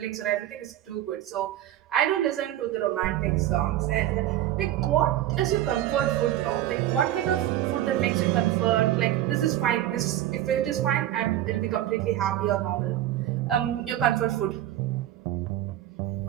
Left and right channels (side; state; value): left; quieter; 13.0 dB